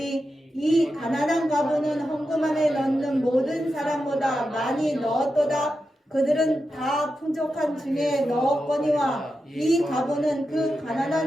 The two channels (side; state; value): both; normal; correlation 0.89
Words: 이 가난한 과부는 헌금함에 넣는 모든 사람보다 많이 넣었도다. 그들은 다 풍족한 중에 넣었거니와 이 과부는 그